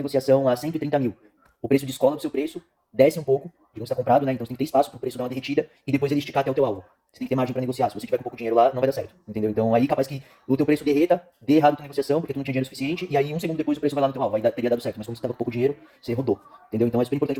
a 130 mil. O preço descola do seu preço, desce um pouco, digamos que está comprado, né? Então você tem que ter espaço para o preço dar uma derretida e depois ele esticar até o teu alvo. Você tem que ter margem para negociar. Se você tiver com pouco dinheiro lá, não vai dar certo, entendeu? Então aí capaz que o teu preço derreta, dê errado a tua negociação, porque tu não tinha dinheiro suficiente, e aí um segundo depois o preço vai lá no teu alvo, teria dado certo. Mas como você estava com pouco dinheiro, você rodou, entendeu? Então é super importante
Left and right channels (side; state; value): both; identical; correlation 1.00